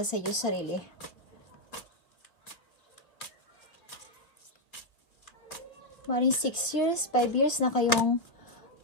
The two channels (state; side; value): late; right; 2.5 ms